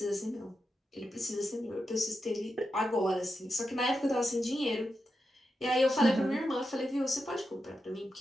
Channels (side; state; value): both; normal; correlation 0.88